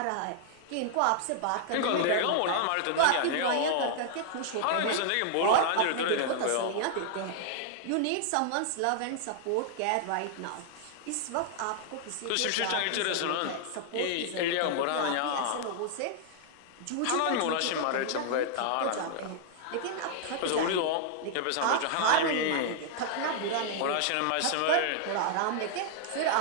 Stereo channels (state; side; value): different; both; correlation -0.01